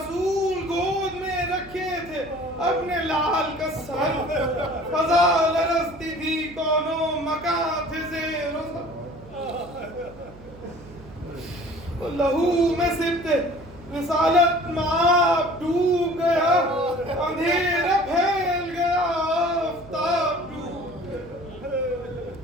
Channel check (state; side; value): noise; right; hum, 20 dB below the sound